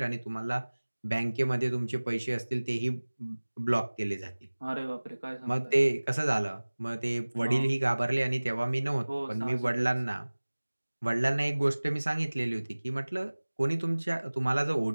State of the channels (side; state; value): both; inverted; correlation -1.00